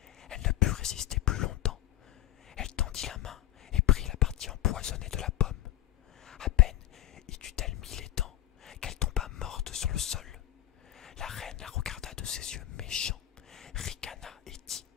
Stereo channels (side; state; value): right; quieter; 14.1 dB